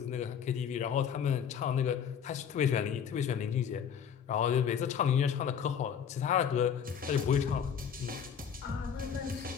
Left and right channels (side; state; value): right; quieter; 7.8 dB